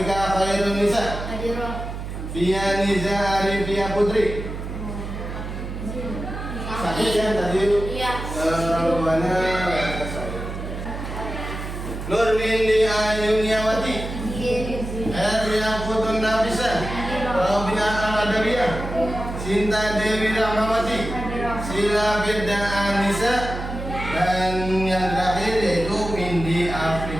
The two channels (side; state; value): right; noise; hum, 7 dB below the sound